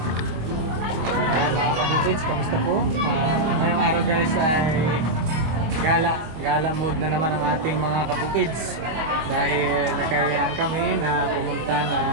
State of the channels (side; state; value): left; late; 25 ms